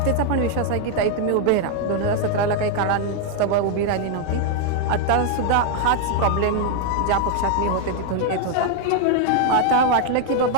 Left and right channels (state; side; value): different; both; correlation 0.01